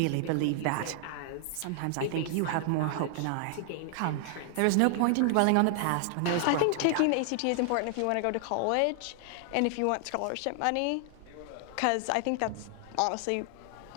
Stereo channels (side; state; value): both; different; correlation 0.00